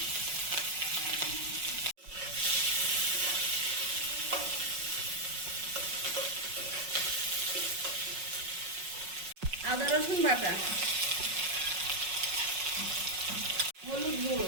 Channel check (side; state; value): left; late; 5.4 ms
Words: আদা রসুন বাটা, হলুদ গুঁড়ো,